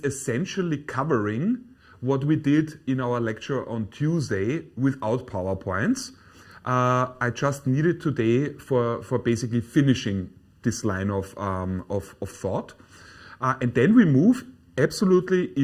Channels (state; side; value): identical; both; correlation 1.00